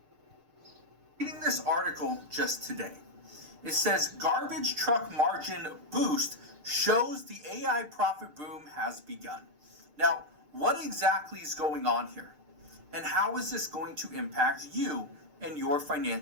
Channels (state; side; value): late; left; 6.6 ms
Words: Reading this article just today. It says garbage truck margin boost shows the AI profit boom has begun. Now, what exactly is going on here? And how is this going to impact you and your